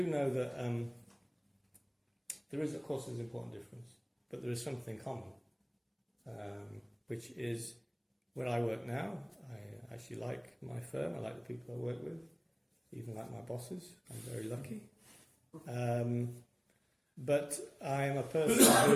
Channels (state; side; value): identical; both; correlation 1.00